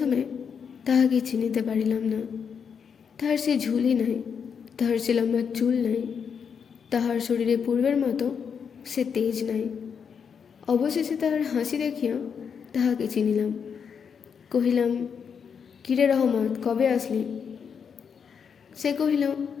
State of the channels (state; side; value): quieter; right; 6.8 dB